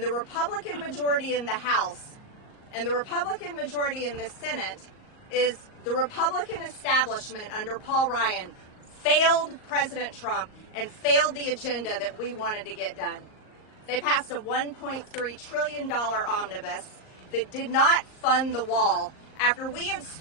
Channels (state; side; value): late; right; 38 ms